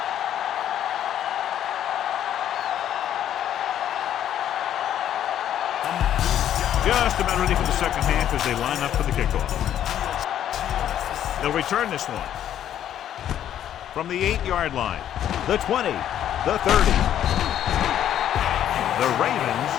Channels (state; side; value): quieter; right; 10.7 dB